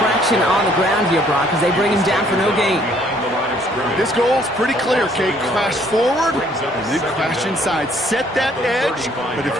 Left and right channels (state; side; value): normal; both; correlation 0.63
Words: on the ground here, Brock, as they bring him down for no gain. This goal is pretty clear, Kate. Crash forward and then crash inside. Set that edge, but if